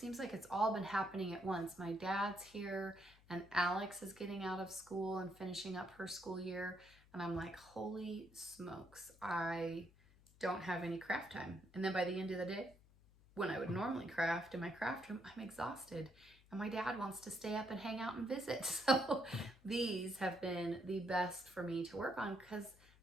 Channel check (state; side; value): noise; left; hum, 26 dB below the sound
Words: like it's all been happening at once. My dad's here and Alex is getting out of school and finishing up her school year. And I'm like, holy smokes, I don't have any craft time. And then by the end of the day, when I would normally craft in my craft room, I'm exhausted. And my dad wants to stay up and hang out and visit. So these have been the best for me to work on because